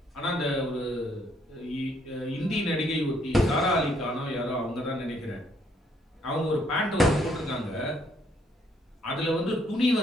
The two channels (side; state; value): both; normal; correlation 0.69